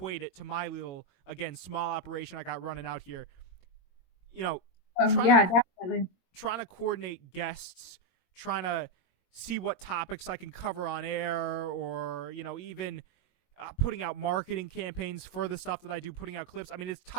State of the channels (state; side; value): late; right; 22 ms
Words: it to my little, again, small operation I got running out here. You know, definitely. Trying to coordinate guests, trying to see what topics I can cover on air, or, you know, even putting out marketing campaigns for the stuff that I do, putting out clips. I mean, it's